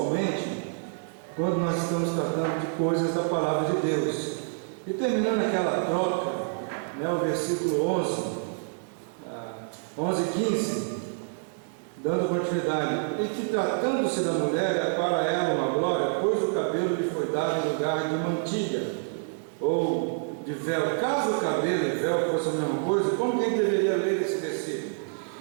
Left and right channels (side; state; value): left; silent; 60 dB below the other